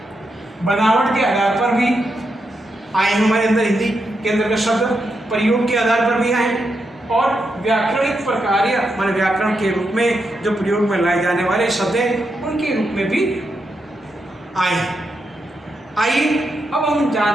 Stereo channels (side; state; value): both; normal; correlation 0.84